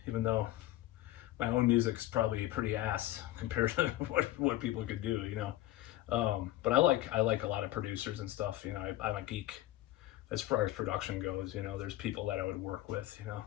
even though my own music's probably pretty ass compared to what people could do, But I like a lot of producers and stuff. I'm a geek as far as production goes. There's people that I would work with.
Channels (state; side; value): quieter; right; 15.4 dB